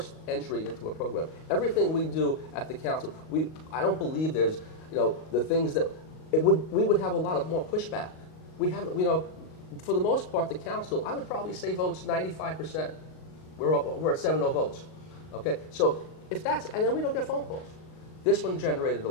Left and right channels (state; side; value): late; right; 38 ms